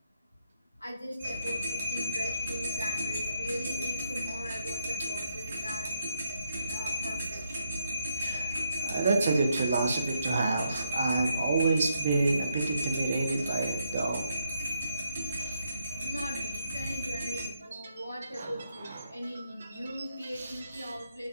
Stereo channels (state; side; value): inverted; both; correlation -0.78